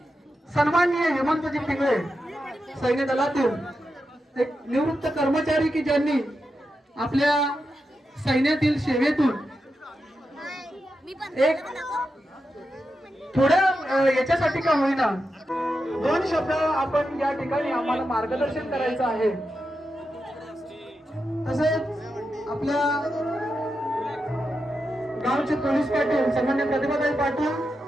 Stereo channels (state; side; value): normal; both; correlation 0.88